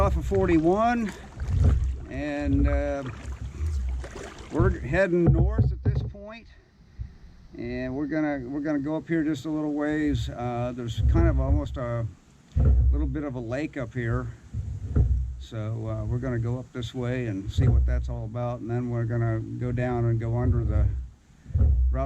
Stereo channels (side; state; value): both; identical; correlation 1.00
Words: of 41, and we're heading north at this point, and we're gonna go up here just a little ways. There's kind of almost a little bit of a lake up here, so we're gonna go up this way and see what that's all about, and then we're gonna go down and go under the